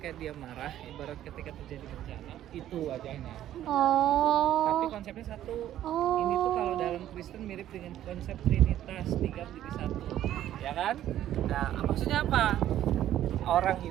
dia marah, ibarat ketika terjadi bencana, itu wajahnya. Tapi Oh. konsepnya satu. Oh. Ini tuh kalau dalam Kristen mirip dengan konsep Trinitas, 3 menjadi 1. Ya kan? Nah, maksudnya apa? Orang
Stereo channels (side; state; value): left; quieter; 12.2 dB